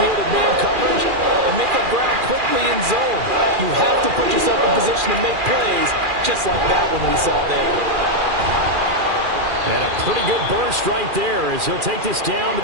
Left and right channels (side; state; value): left; late; 2.4 ms